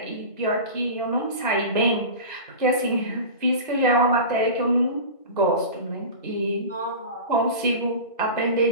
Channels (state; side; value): inverted; both; correlation -0.31